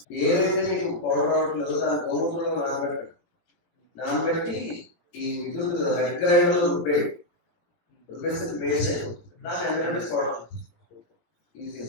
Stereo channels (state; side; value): late; right; 18 ms